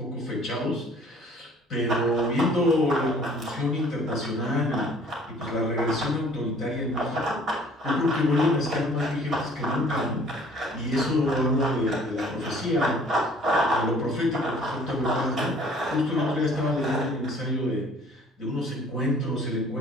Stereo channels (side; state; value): both; normal; correlation 0.54